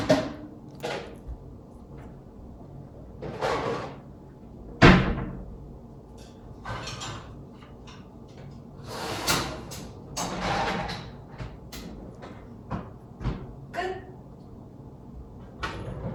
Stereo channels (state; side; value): identical; both; correlation 1.00